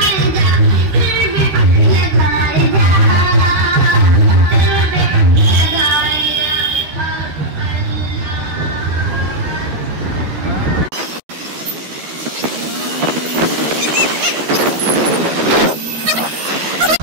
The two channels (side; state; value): left; late; 13 ms